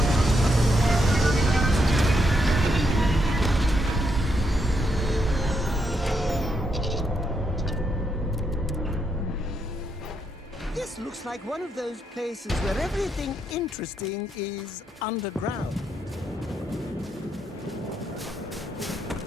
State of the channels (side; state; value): both; normal; correlation 0.79